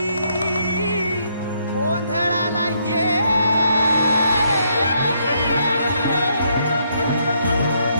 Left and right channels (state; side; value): inverted; both; correlation -0.73